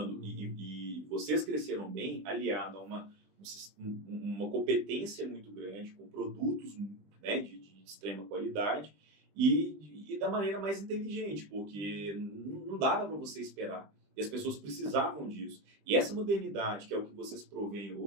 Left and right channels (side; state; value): left; late; 20 ms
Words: e vocês cresceram bem, aliado a uma competência muito grande, com produtos, né, de extrema qualidade e da maneira mais inteligente, porque não dava para você esperar. E as pessoas precisavam disso. E essa modernidade, que é o que vocês provêm